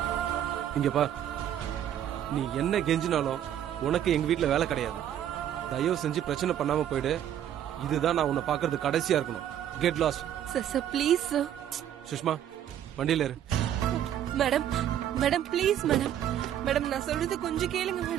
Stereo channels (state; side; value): quieter; left; 10.6 dB